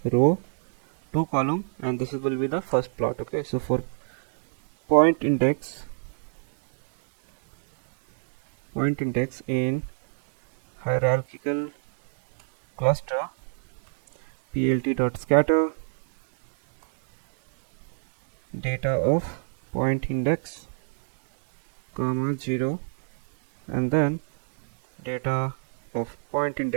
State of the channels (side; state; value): left; silent; 61 dB below the other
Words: row, two column, and this will be the first plot. Okay, so for point index in hierarchical cluster, plt dot scatter data of point index comma 0, and then data of point